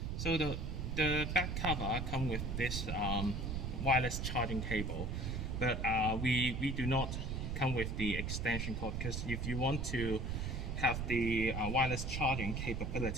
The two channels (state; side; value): noise; right; rumble, 2 dB below the sound